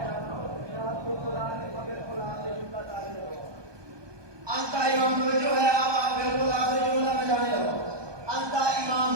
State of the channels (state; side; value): late; left; 1.2 ms